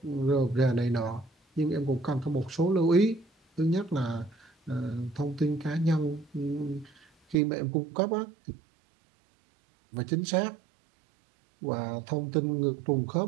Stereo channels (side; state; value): left; drops out; at 7.4 s